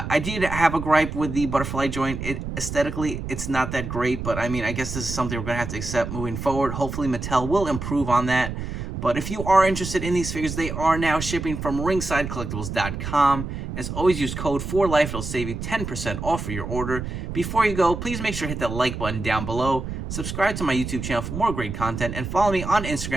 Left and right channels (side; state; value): right; noise; rumble, 6 dB below the sound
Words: did have a gripe with the butterfly joint. Aesthetically, it's not that great, but I mean, I guess this is something we're going to have to accept moving forward. Hopefully, Mattel will improve on that. But if you are interested in these figures, they are now shipping from ringsidecollectibles.com. As always, use code 4LIFE. It'll save you 10% off of your order. Before you go, please make sure to hit that like button down below. Subscribe to my YouTube channel for more great content. And follow me on